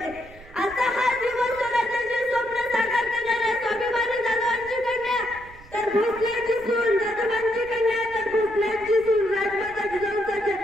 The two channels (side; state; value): right; noise; rumble, 21 dB below the sound